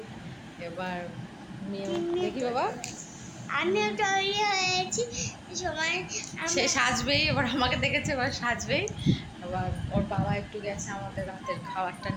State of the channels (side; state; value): both; identical; correlation 1.00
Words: এবার দেখি বাবা আমিও তৈরি হয়েছি, সময় সে সাজবেই, এবার আমাকে দেখেছে এবার সাজবেই। এবার ওর বাবা একটু গেছে আমাদের রাতের খাবারটা